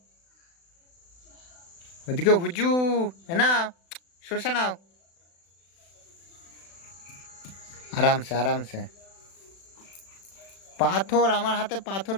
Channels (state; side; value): late; right; 36 ms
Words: ওদিকে হুজু। না, শসা নাও, আরামসে আরামসে। পাথর আমার হাতে পাথর